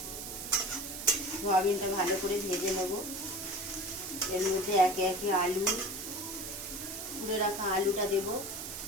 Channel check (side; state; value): right; noise; hiss, 8 dB below the sound